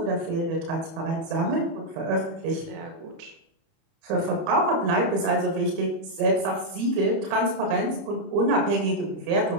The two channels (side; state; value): left; late; 30 ms